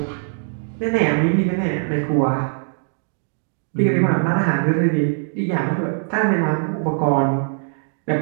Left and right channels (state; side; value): silent; left; 65 dB below the other